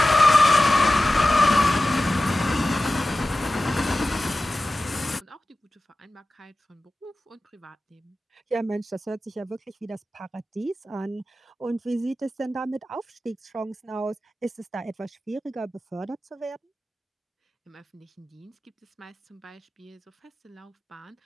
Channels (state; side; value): normal; both; correlation 0.95